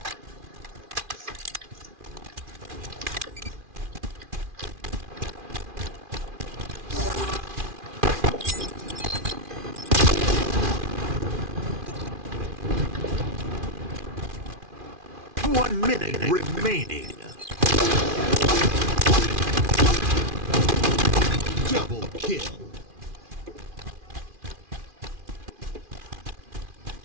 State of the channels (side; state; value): left; late; 2.4 ms